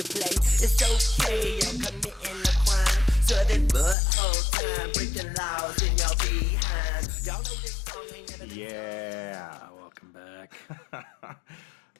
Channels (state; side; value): drops out; right; at 4.0 s